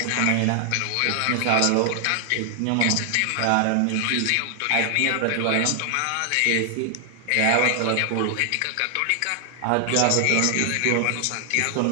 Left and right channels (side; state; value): both; different; correlation 0.00